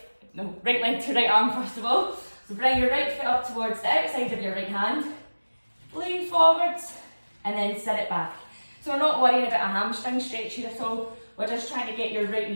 No, right leg to right arm first of all. So bring your right foot up towards the outside of your right hand. Lean forwards and then sit it back. So we're not worrying about a hamstring stretch here at all. We're just trying to get your right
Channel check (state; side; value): inverted; both; correlation -1.00